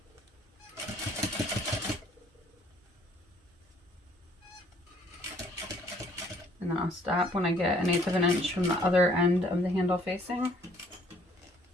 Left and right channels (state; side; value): normal; both; correlation 0.61